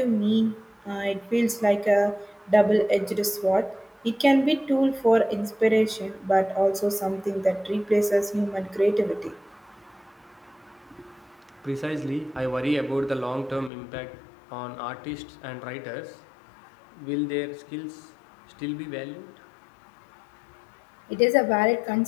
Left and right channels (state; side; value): drops out; right; at 13.7 s